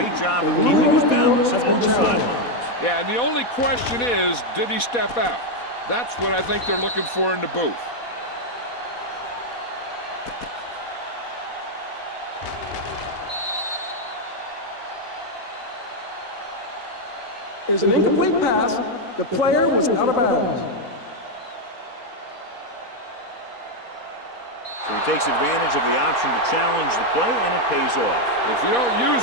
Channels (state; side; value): late; right; 4.2 ms